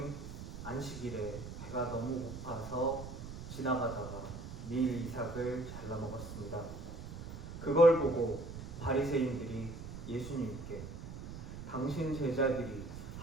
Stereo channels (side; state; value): right; noise; rumble, 10 dB below the sound